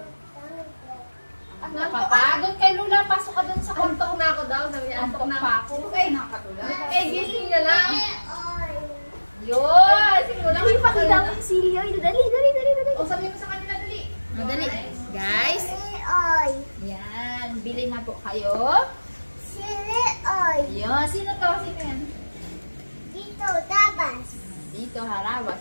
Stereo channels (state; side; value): inverted; both; correlation -1.00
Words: Napapagod kay Lula. Pasok ka dun sa kwarto. Antok na ako daw. Sabi niya, antok na ako. Ay, Nakatulog. Eh, gising na lang. Oil. yun! Siguro Uy, pakita mo yung sili oil. Dali, dali, dali, dali. O, sabihin mo sa kanila, dali. Madali. Guys, Chili oil. yan. Bili na po kayo. Chili oil. Yun. Sino to? Sino yan? Dito, tabas. Dito, harawas.